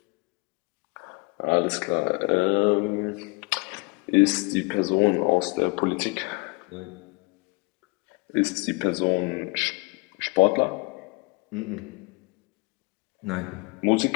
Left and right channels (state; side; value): quieter; right; 28.6 dB